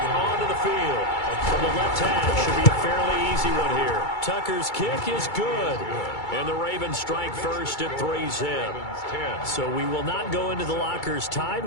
onto the field. From the left half, should be a fairly easy one here. Tucker's kick is good. And the Ravens strike first at 3-zip. So we will not go into the lockers tied.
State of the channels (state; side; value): late; right; 2.3 ms